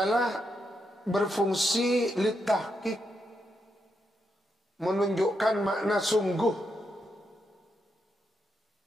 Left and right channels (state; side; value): normal; both; correlation 0.82